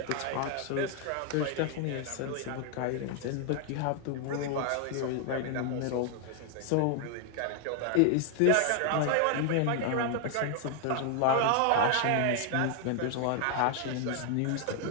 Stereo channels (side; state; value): both; different; correlation 0.00